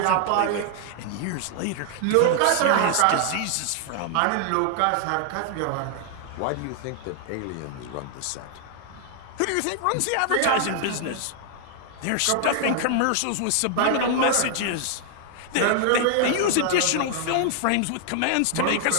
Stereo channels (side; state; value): both; different; correlation 0.00